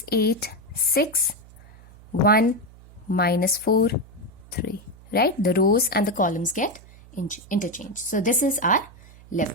6, 1, -4, 3. Right? The rows and the columns get interchanged. So this is our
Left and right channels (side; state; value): right; noise; hum, 22 dB below the sound